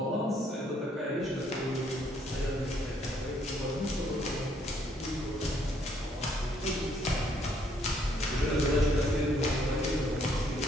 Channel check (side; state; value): both; normal; correlation 0.68